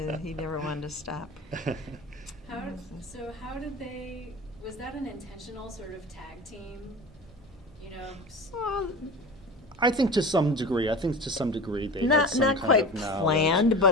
he never wanted to stop. How did they, was that an intentional sort of tag team, you know? Well, I think to some degree. They had not some not kind quite of knowledge. planned,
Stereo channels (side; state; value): both; normal; correlation 0.33